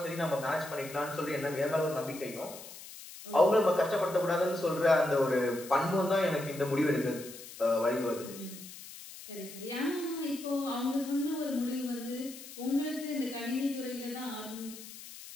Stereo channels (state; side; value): noise; left; hiss, 14 dB below the sound